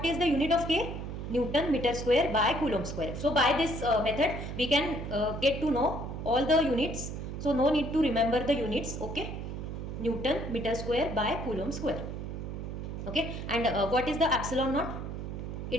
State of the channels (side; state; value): right; noise; hum, 6 dB below the sound